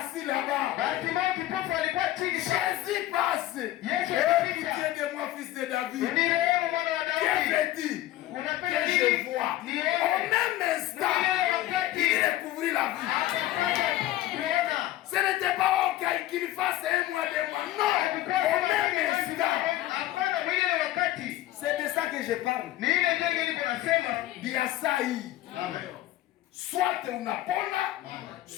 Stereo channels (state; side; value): quieter; right; 14.7 dB